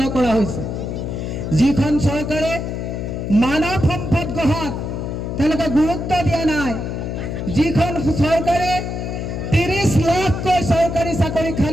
কৰা হৈছে। যিখন চৰকাৰে মানৱ সম্পদ গঢ়াত তেওঁলোকে গুৰুত্ব দিয়া নাই, যিখন চৰকাৰে 30 লাখকৈ চৰকাৰী চাকৰি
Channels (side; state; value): left; noise; hum, 4 dB below the sound